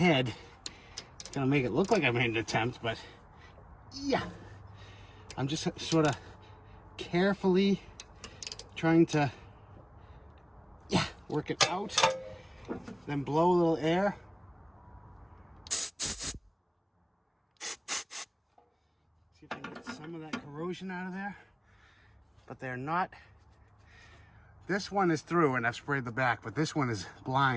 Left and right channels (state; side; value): identical; both; correlation 1.00